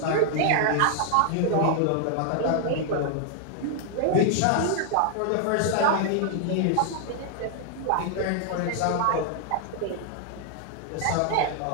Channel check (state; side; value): different; both; correlation 0.00